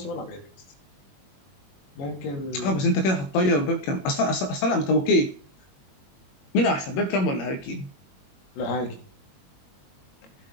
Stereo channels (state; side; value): late; right; 21 ms